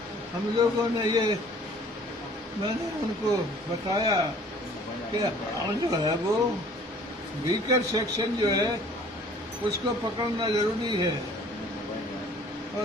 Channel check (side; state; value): both; normal; correlation 0.53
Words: हम लोगों ने मैंने उनको बताया कि जो है वो वीकर सेक्शन जो है उसको पकड़ना जरूरी है, और